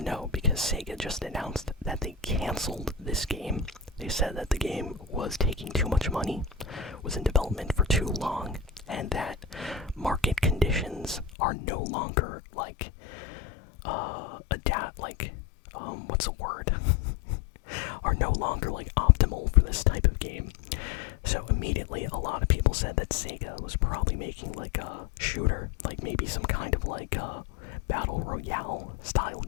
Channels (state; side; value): drops out; right; at 11.3 s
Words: know because Sega just announced that they canceled this game. They said that the game was taking too much money, was in development for too long, and that market conditions are no longer like what's the word? are no longer like optimal for this type of game. So immediately a lot of people said that Sega was probably making like a shooter, like maybe some kind of like a battle royale style